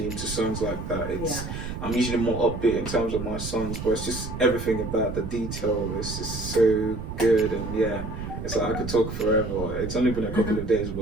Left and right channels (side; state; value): right; noise; rumble, 7 dB below the sound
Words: into songs like that. I'm usually more upbeat in terms of my songs, but it's just everything about the detail. It's just so good, and it's like I could talk forever. It's only been a couple of days,